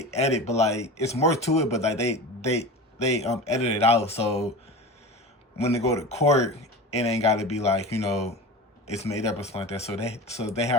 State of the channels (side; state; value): both; normal; correlation 0.31